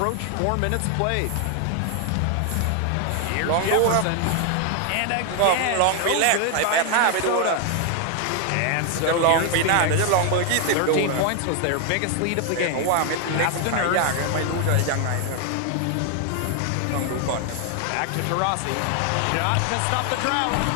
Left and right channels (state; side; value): different; both; correlation 0.00